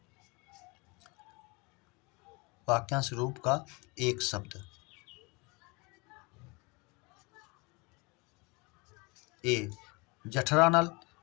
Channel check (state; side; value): quieter; right; 27.7 dB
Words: वाक्यांश रूप का एक शब्द। ए जठरानल,